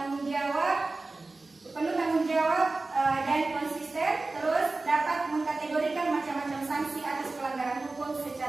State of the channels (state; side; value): quieter; left; 3.4 dB